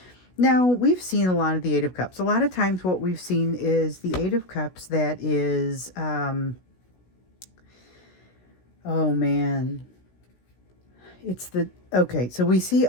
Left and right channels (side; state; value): right; late; 16 ms